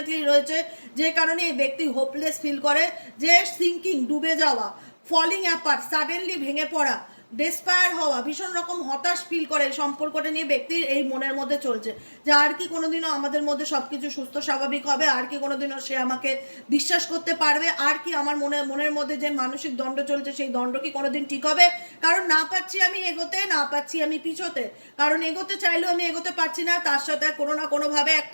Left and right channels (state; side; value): inverted; both; correlation -1.00